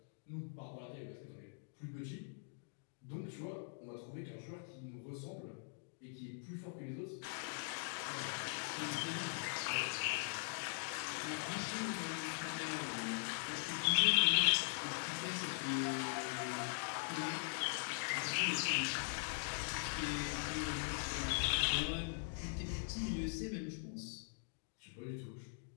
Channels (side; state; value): right; silent; digital silence